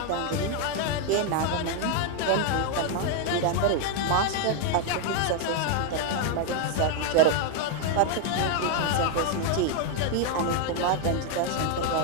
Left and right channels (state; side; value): different; both; correlation 0.01